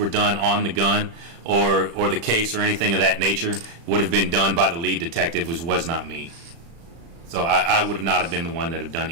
done on the gun or the case or anything of that nature would have been done by the lead detective, which was not me. So I would have not have been the one that have done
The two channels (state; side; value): late; left; 36 ms